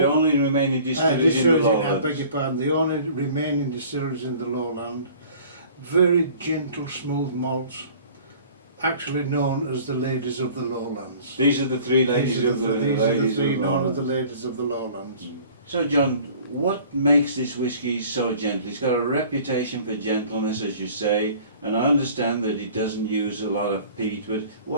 only remaining distilleries in the Lowlands. I beg your pardon, the only remaining distilleries in the Lowland. Very gentle, smooth malts, actually known as the ladies of the Lowlands. These are the 3 ladies of the Lowlands. These are the 3 known as the ladies of the Lowlands. So, John, what makes this whisky so gentle? It's got a reputation for gentleness, as you say, and I understand that it doesn't use a lot of peat, but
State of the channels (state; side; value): inverted; both; correlation -0.48